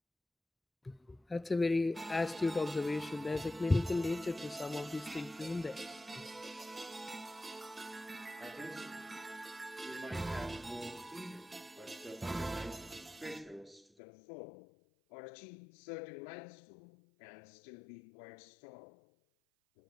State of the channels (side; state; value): right; drops out; at 13.9 s